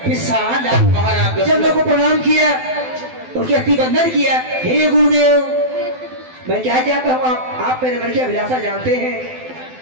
विशाला। महाराज चरणों को प्रणाम किया, उनके अतिबंधन किया। हे गुरुदेव, मैं क्या चाहता हूँ, आप मेरे मन की अभिलाषा जानते हैं।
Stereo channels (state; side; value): late; left; 12 ms